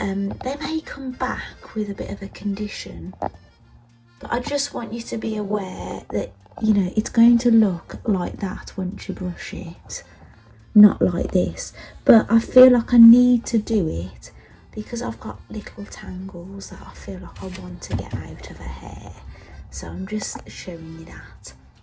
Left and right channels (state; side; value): identical; both; correlation 1.00